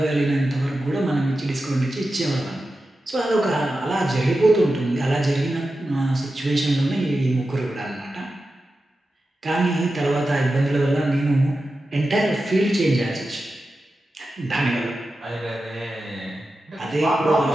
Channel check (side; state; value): both; normal; correlation 0.92